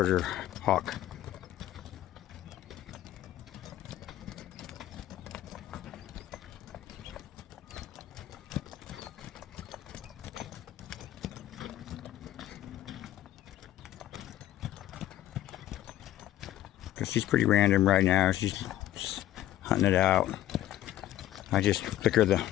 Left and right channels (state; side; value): quieter; right; 13.6 dB